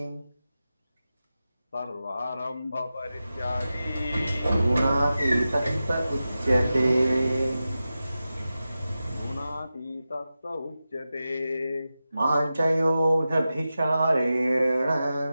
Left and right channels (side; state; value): both; inverted; correlation -0.93